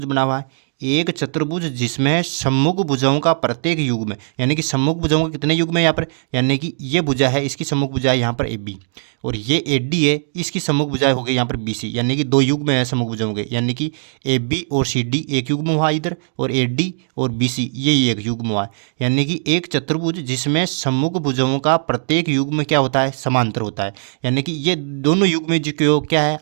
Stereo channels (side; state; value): left; silent; digital silence